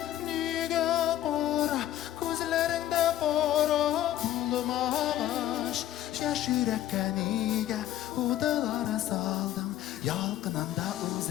niga qora, ko'zlaringda qora bo'lmabash. Yash yurakka niga o'tlar soldim, yalqinanda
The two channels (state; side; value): quieter; right; 12.8 dB